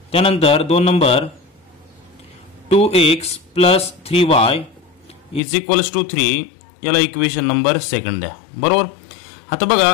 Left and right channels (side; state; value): right; drops out; at 5.4 s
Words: त्यानंतर 2 नंबर 2x + 3y = 3, याला इक्वेशन नंबर सेकंड द्या, बरोबर। आता बघा